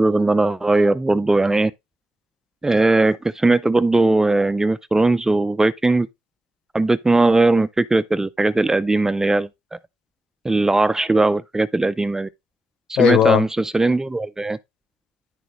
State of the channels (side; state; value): both; normal; correlation 0.92